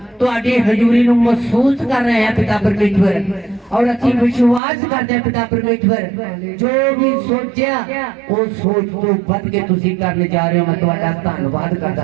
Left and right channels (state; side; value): drops out; left; at 4.6 s